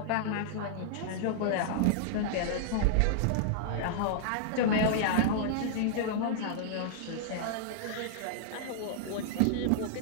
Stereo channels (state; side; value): different; both; correlation -0.01